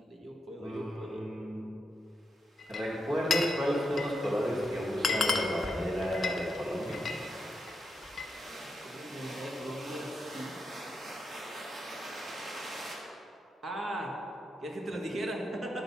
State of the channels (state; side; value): normal; both; correlation 0.84